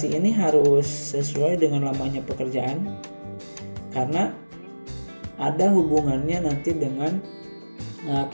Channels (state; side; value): inverted; both; correlation -1.00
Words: ini harus sesuai dengan lamanya pekerjaan karena ada hubungannya nanti dengan